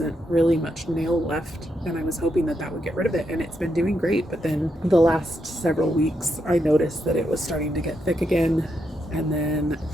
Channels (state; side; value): normal; both; correlation 0.81